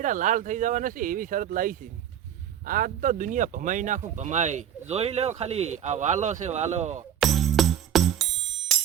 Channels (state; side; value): quieter; left; 9.8 dB